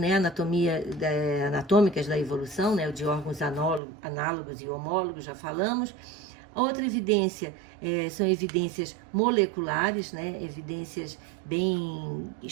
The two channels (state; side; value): drops out; left; at 3.8 s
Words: anatômicas da evolução, né, de órgãos análogos e homólogos, já falamos. A outra evidência são evidências moleculares, né? Evidências bem